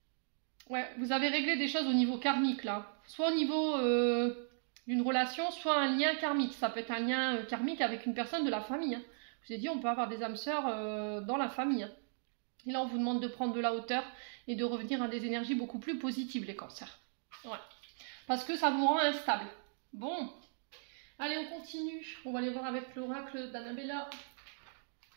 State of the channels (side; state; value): left; silent; digital silence